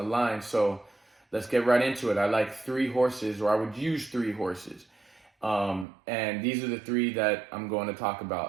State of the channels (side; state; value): left; drops out; at 5.9 s